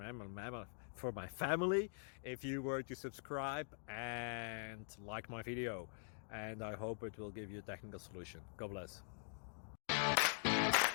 my family if you were to subscribe and like my video. And I hope it will give you a technical solution. God bless.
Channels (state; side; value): silent; right; digital silence